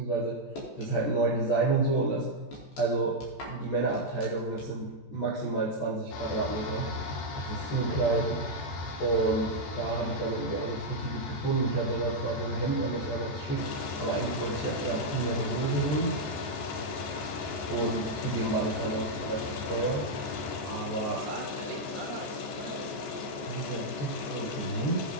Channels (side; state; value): right; late; 14 ms